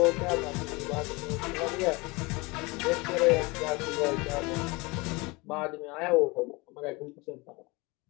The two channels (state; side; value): quieter; right; 25.4 dB